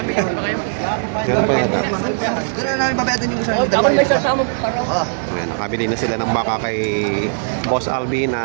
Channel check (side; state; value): left; silent; digital silence